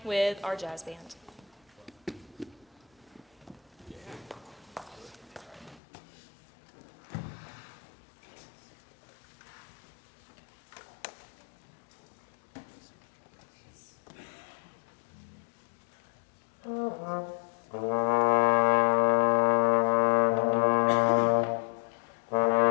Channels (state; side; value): drops out; right; at 5.8 s